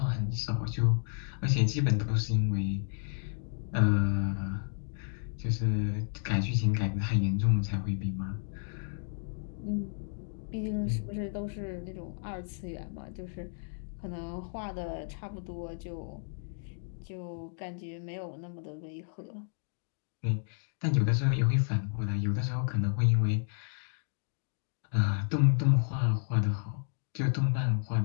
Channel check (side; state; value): right; silent; digital silence